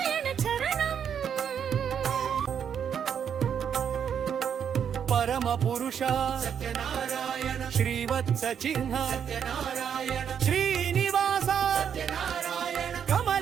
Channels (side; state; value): left; quieter; 8.0 dB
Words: చరణం పరమ పురుష సత్యనారాయణ శ్రీవత్స చిహ్న సత్యనారాయణ శ్రీనివాస సత్యనారాయణ